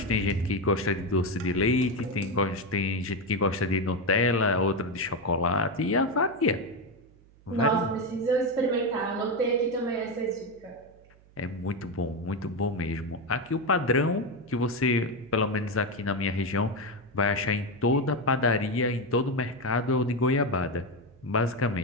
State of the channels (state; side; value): noise; right; hum, 27 dB below the sound